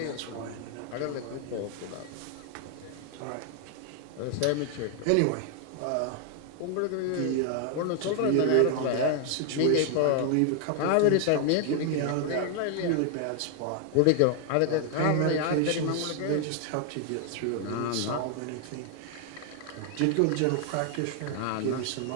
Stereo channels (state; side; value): different; both; correlation 0.00